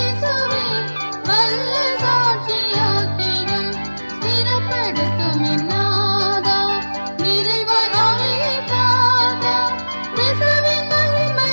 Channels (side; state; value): both; inverted; correlation -1.00